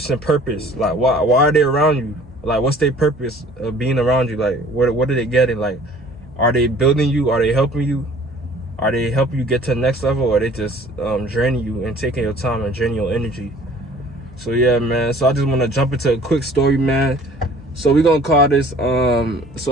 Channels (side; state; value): both; normal; correlation 0.51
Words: purpose? Like why are they around you? Like what's their purpose of being around you? Like what are they getting? Like are they building you? Are they helping you? Are they helping you get to the next level, or are they just draining you and taking your time and draining your energy? So yeah, man, so I just want to jump into a quick story, man. So we're gonna call this